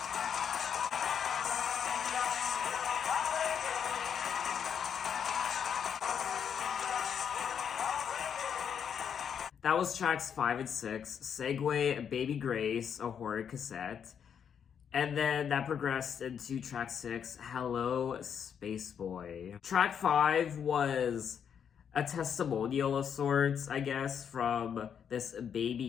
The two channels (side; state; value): right; quieter; 7.8 dB